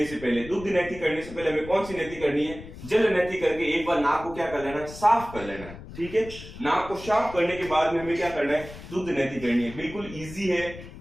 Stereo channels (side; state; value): left; noise; rumble, 14 dB below the sound